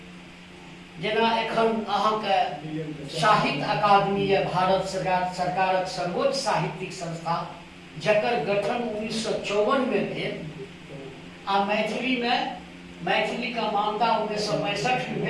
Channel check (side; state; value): both; identical; correlation 1.00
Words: जेना एखन अहाँके साहित्य अकादमी है, भारत सरकारक सर्वोच्च साहित्यिक संस्था, जकर गठन 1954 में भेल। आ मैथिली में, मैथिली का मान्यता 1965 में